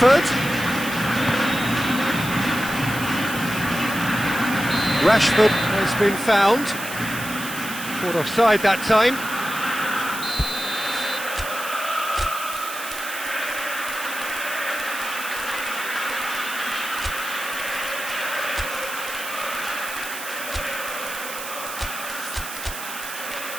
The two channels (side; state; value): right; noise; hiss, 9 dB below the sound